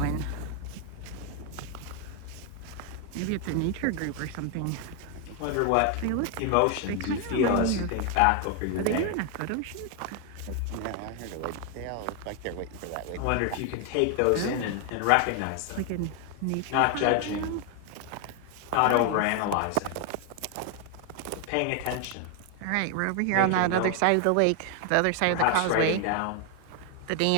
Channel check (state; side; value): different; both; correlation 0.01